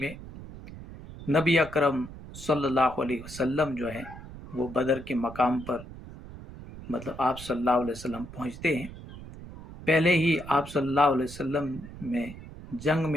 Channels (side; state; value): right; noise; rumble, 14 dB below the sound